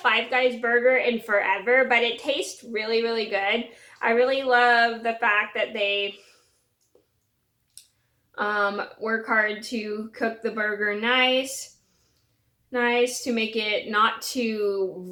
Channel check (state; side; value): identical; both; correlation 1.00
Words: Guys burger in forever, but it tastes really, really good. I really love the fact that they work hard to cook the burger nice to make it not too